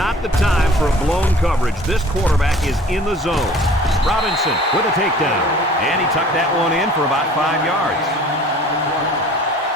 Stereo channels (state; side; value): normal; both; correlation 0.49